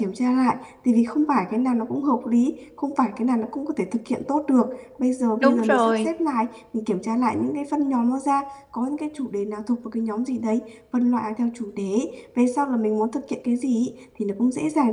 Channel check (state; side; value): identical; both; correlation 1.00